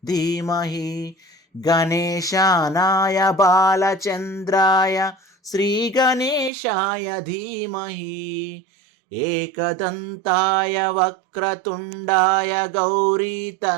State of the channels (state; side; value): drops out; left; at 6.5 s